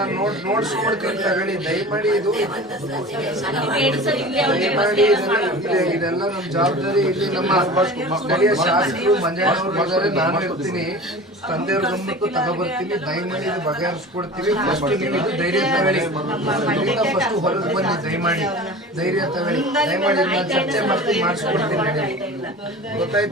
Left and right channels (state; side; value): normal; both; correlation 0.37